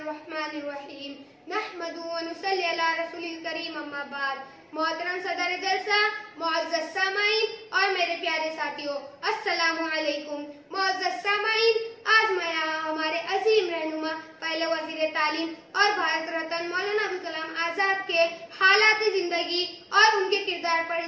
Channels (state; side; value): identical; both; correlation 1.00